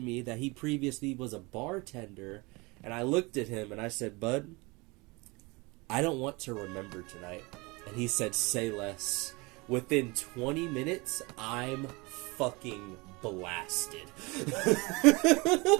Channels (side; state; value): left; quieter; 25.8 dB